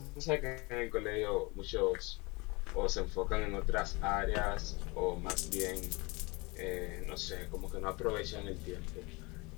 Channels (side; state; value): right; quieter; 26.2 dB